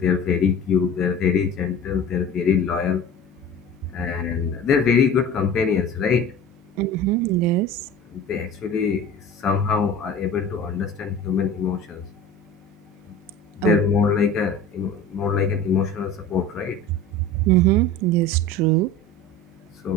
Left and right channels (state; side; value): normal; both; correlation 0.37